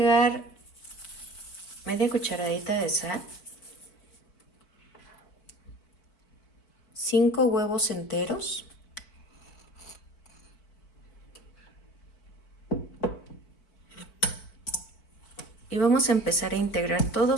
media cucharadita de sal, 5 huevos enteros, y vamos a empezar a integrar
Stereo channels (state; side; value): late; right; 4.5 ms